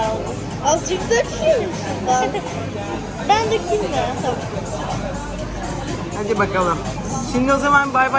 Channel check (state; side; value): identical; both; correlation 1.00